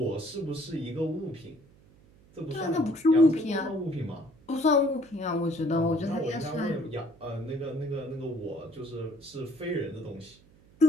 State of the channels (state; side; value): noise; right; hum, 27 dB below the sound